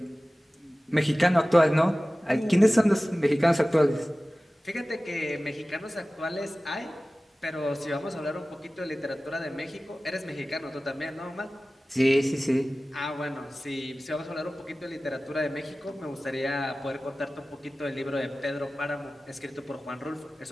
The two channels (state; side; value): normal; both; correlation 0.97